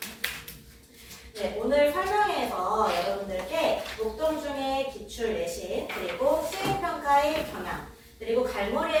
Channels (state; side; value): identical; both; correlation 1.00